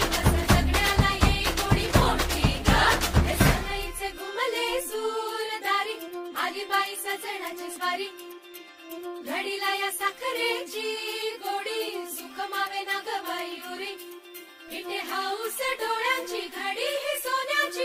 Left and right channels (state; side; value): identical; both; correlation 1.00